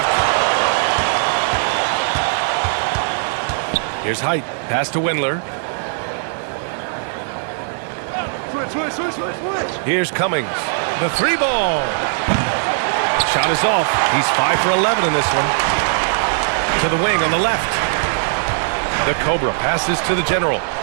Here's Height. Pass to Windler. Here's Cummings. The 3 ball. Shot is off. He's 5 for 11 in this one. To the wing on the left. The Cobra passes to the general.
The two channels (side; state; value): left; silent; digital silence